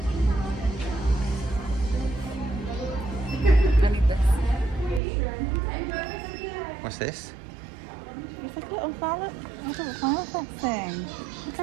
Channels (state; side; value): drops out; left; at 5.0 s